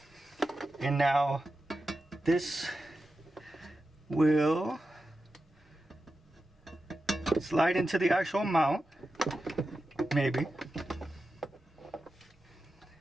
And now this will slide into the actual mount, maybe.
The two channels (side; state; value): both; normal; correlation 0.91